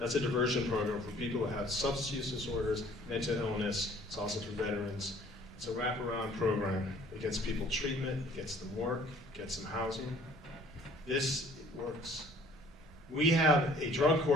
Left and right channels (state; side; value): normal; both; correlation 0.55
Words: a diversion program for people who have substance use disorders, mental illness. It's also for veterans. It's a wraparound program. It gets people treatment, it gets them work, it gets them housing. This works. We have a drug